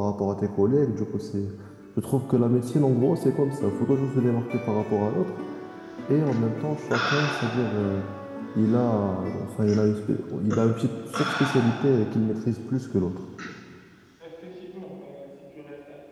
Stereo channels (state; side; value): identical; both; correlation 1.00